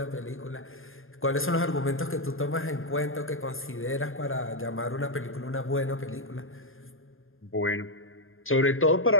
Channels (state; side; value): late; right; 0.60 ms